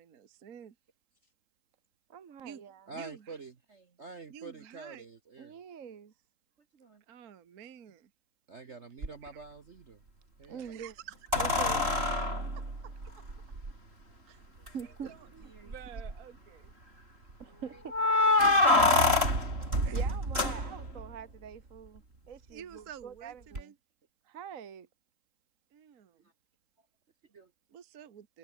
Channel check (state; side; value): late; left; 3.8 ms